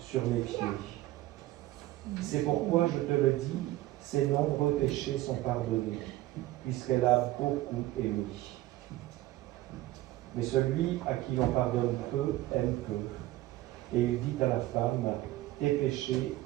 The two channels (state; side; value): quieter; left; 16.5 dB